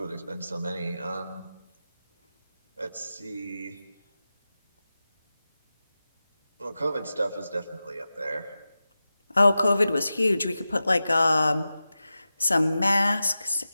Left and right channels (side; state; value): both; inverted; correlation -0.93